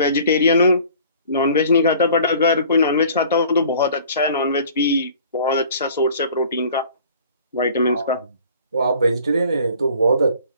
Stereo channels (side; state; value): both; inverted; correlation -0.50